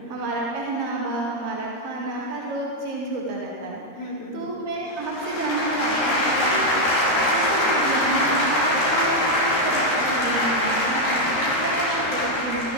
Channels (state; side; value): late; right; 13 ms